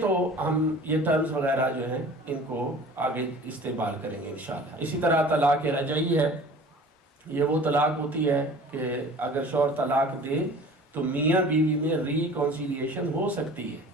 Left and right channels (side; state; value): both; normal; correlation 0.44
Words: تو ہم یہ ٹرمز وغیرہ جو ہیں ان کو آگے استعمال کریں گے انشاءاللہ. اسی طرح طلاق رجعی ہے. یہ وہ طلاق ہوتی ہے کہ اگر شوہر طلاق دے تو میاں بیوی میں ریکنسیلیشن ہو سکتی ہے،